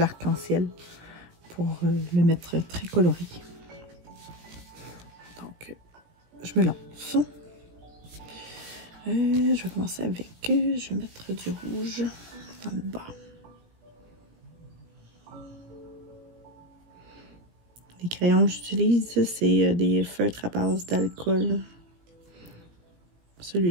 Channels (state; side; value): late; left; 17 ms